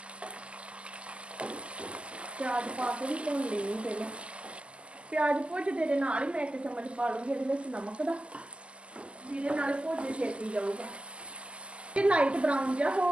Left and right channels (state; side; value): late; left; 0.054 ms